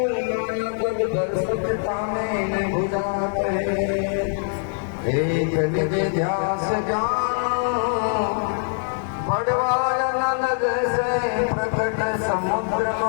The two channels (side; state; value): right; silent; digital silence